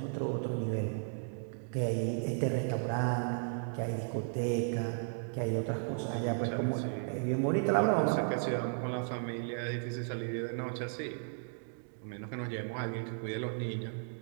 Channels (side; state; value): left; silent; digital silence